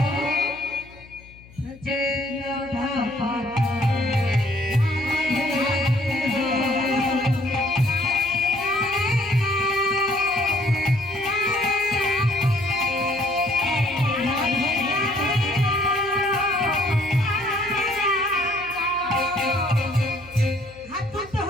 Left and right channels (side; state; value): left; noise; hum, 22 dB below the sound